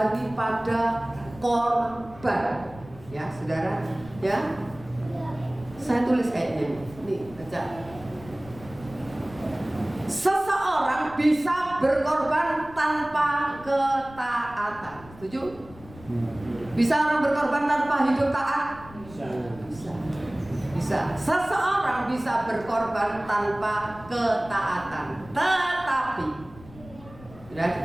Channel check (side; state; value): left; noise; rumble, 19 dB below the sound